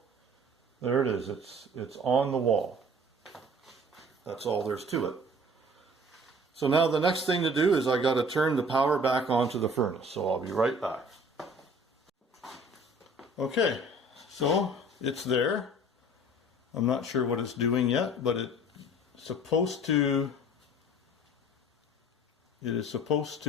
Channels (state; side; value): normal; both; correlation 0.49